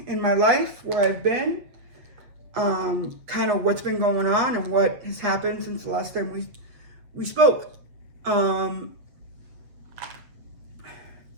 in my life where I've been, kind of what's been going on and what has happened since the last time we spoke. To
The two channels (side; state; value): left; late; 7.9 ms